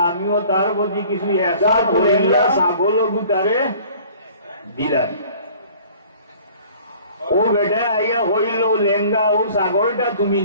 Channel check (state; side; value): inverted; both; correlation -0.50